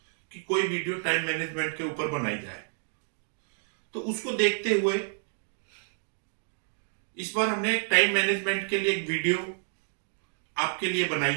कि कोई वीडियो टाइम मैनेजमेंट के ऊपर बनाई जाए। तो उसको देखते हुए इस बार हमने एक टाइम मैनेजमेंट के लिए एक वीडियो आपके लिए बनाई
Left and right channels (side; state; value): left; silent; 58 dB below the other